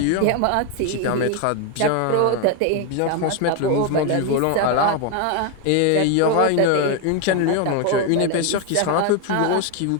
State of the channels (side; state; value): both; different; correlation 0.01